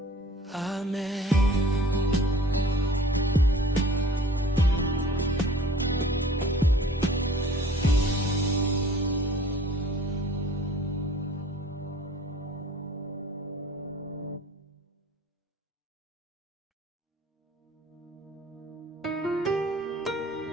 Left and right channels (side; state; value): both; normal; correlation 0.48